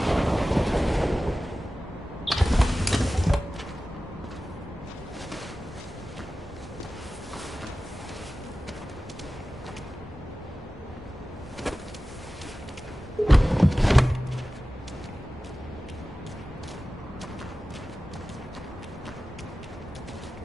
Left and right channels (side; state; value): both; normal; correlation 0.95